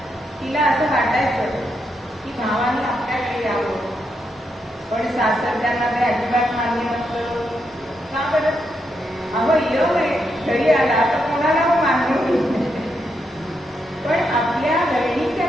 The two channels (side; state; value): both; normal; correlation 0.81